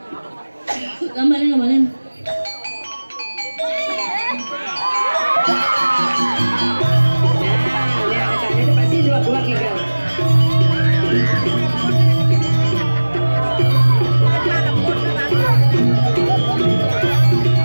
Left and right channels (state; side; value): inverted; both; correlation -1.00